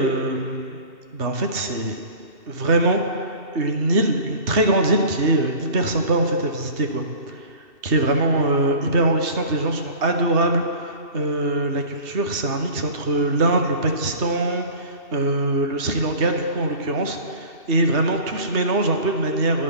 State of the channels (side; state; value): left; late; 2.7 ms